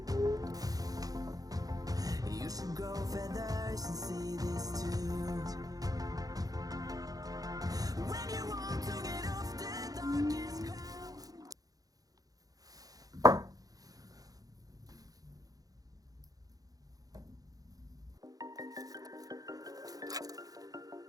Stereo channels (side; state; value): left; late; 0.18 ms